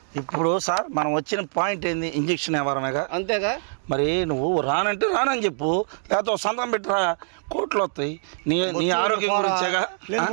ఇప్పుడు సార్ మనం వచ్చిన పాయింట్ ఏంది? ఇంజక్షన్ ఎవరనగా అంతేగా. మరి నువ్వు రానంటే రానని చెప్పు, లేకపోతే సంతకం పెట్టరా, కోట్లు వస్తాయి. నీ ఆరోగ్యం గురించేగా.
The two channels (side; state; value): left; silent; digital silence